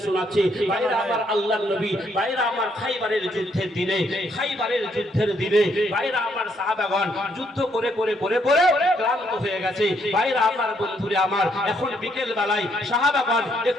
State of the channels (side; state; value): both; normal; correlation 0.72